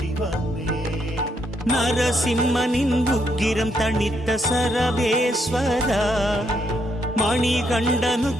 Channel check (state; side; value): normal; both; correlation 0.76